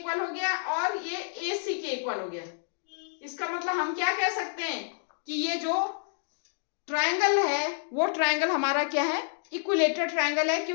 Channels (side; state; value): right; silent; digital silence